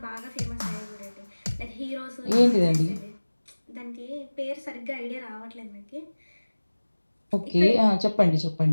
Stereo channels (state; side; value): inverted; both; correlation -1.00